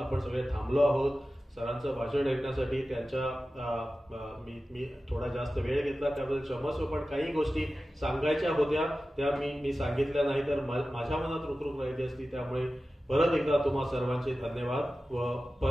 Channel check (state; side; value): normal; both; correlation 0.95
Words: सगळे थांबलो आहोत सरांचं भाषण ऐकण्यासाठी. त्यांच्या मी थोडा जास्त वेळ घेतला त्याबद्दल क्षमस्व, पण काही गोष्टी सांगायच्या होत्या त्या मी सांगितल्या नाही तर माझ्या मनात रुखरुख राहिली असती. त्यामुळे परत एकदा तुम्हा सर्वांचे धन्यवाद. व